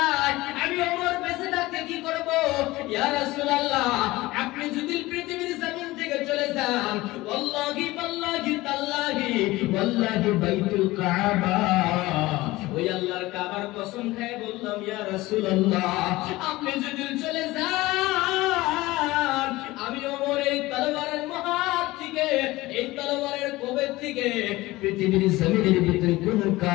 আমি ওমর বেঁচে থাকতে কি করব? ইয়া রাসূলুল্লাহ, আপনি যদি পৃথিবীর জমিন থেকে চলে যান, ওয়াল্লাহি ওয়াল্লাহি তাল্লাহি ওয়াল্লাহি বাইতুল কাবা, ওই আল্লাহর কাবার কসম খেয়ে বললাম, ইয়া রাসূলুল্লাহ, আপনি যদি চলে যান, আমি ওমর এই তলোয়ারের মহাত থেকে, এই তলোয়ারের কোবের থেকে পৃথিবীর জমিনের ভিতরে কোন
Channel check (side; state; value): right; quieter; 19.2 dB